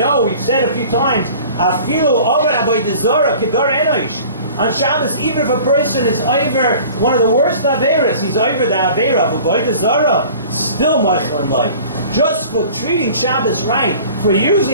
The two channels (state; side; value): inverted; both; correlation -0.45